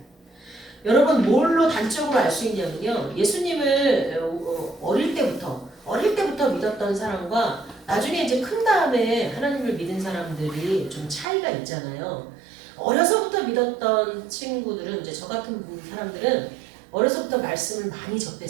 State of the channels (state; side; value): drops out; left; at 11.2 s